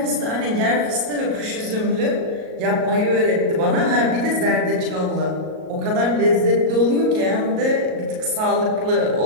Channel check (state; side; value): late; left; 38 ms